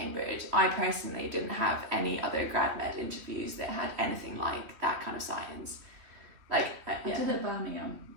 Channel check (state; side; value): late; left; 3.1 ms